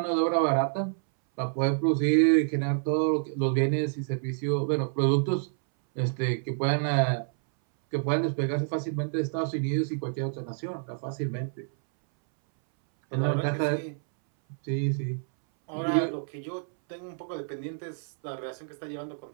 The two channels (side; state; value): left; silent; 59 dB below the other